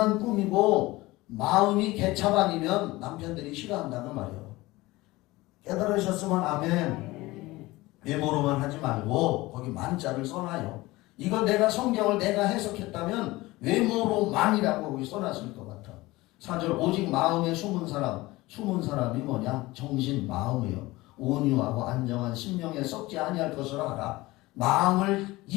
꾸미고 마음이 개차반이면 남편들이 싫어한다는 말이에요. 깨달으셨으면 아멘. 외모로만 하지 말고 거기 만자를 써놔요. 이거 내가 성경을 내가 해석했다면 외모로만이라고 거기 써놨을 것 같아. 4절 오직 마음에 숨은 사람. 숨은 사람이 뭐냐? 정신, 마음이요. 온유하고 안정한 심령에 썩지 아니할 것으로 하라. 마음을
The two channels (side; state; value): right; quieter; 20.0 dB